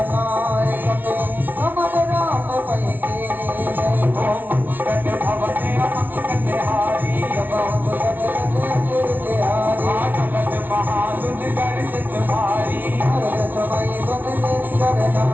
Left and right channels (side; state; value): left; late; 0.088 ms